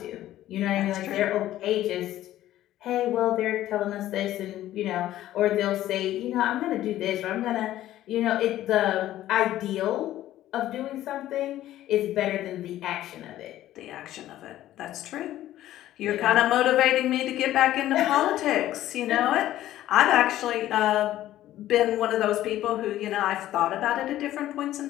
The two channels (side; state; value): right; quieter; 13.7 dB